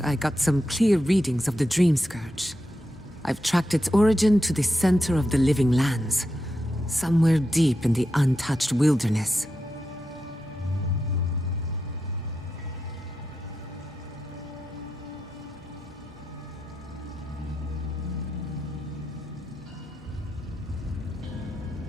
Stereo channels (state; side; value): normal; both; correlation 0.87